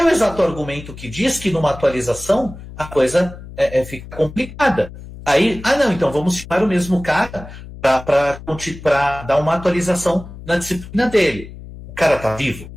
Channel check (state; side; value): noise; left; hum, 15 dB below the sound